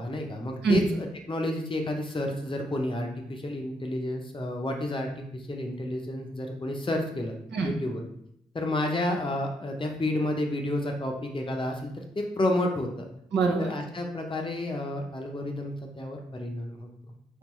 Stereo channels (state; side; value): normal; both; correlation 0.76